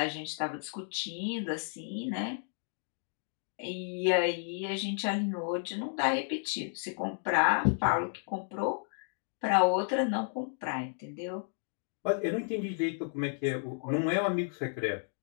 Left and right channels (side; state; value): right; silent; digital silence